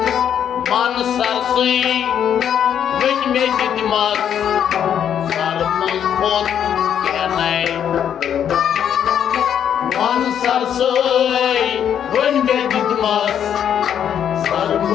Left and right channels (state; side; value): quieter; right; 9.1 dB